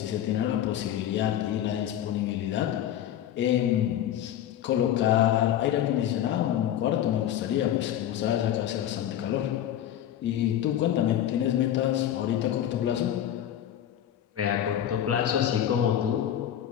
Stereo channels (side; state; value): right; quieter; 11.0 dB